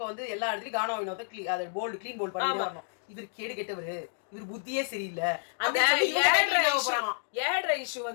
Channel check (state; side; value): silent; right; digital silence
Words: வந்து எல்லா இடத்துலயும் கானா வினோத அதை போல்டு கிளீன் போல்ட் பண்ணி வரணும். இவர் கேடு கெட்டவரு, இவர் புத்தியே சரியில்லை. அந்த ஏழ்ற இஷ்யூ